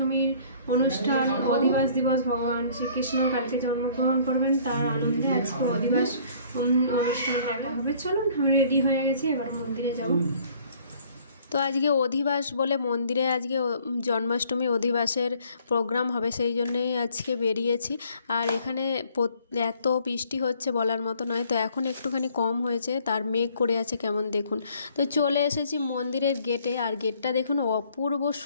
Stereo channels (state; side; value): inverted; both; correlation -0.58